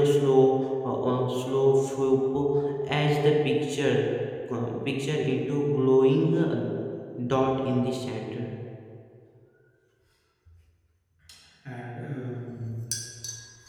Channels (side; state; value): both; identical; correlation 1.00